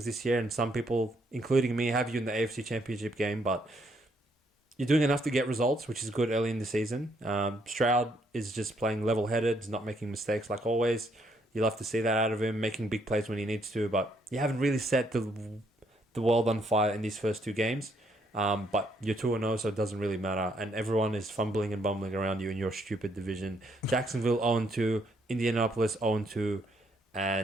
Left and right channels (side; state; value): both; normal; correlation 0.72